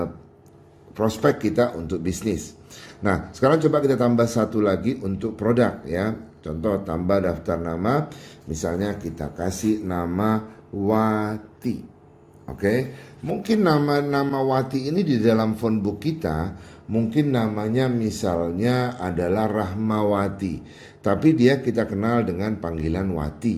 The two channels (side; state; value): both; identical; correlation 1.00